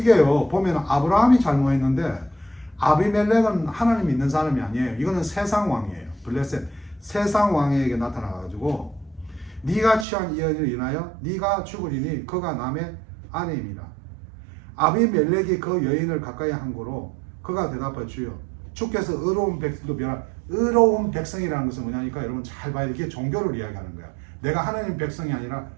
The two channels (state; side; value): drops out; left; at 10.1 s